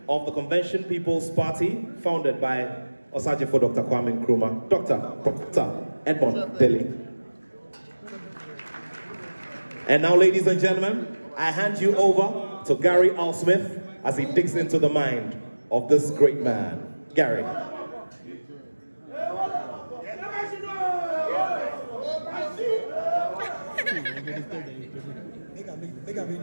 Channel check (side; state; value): both; inverted; correlation -1.00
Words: of the Convention People's Party, founded by Osajifo Dr. Kwame Nkrumah, Dr. Edmond Dele. And now, ladies and gentlemen, I hand you over to Gary L. Smith as he digs into the mind of this great man. Gary.